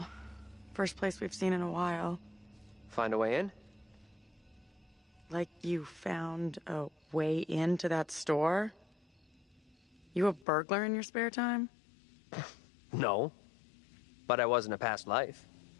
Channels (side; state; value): right; drops out; at 10.5 s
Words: first place we've seen in a while. Find a way in? Like you found a way into that store? You a burglar in your spare time? No. But I was in a past life.